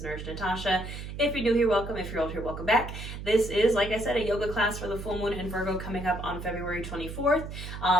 Nurse Natasha. If you're new here, welcome. If you're old here, welcome back. This is, like I said, a yoga class for the full moon in Virgo coming up on February 24th.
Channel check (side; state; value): right; noise; hum, 9 dB below the sound